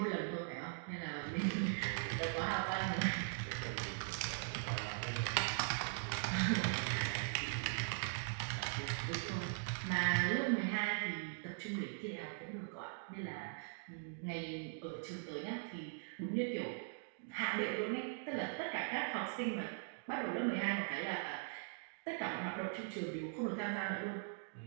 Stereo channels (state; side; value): silent; left; digital silence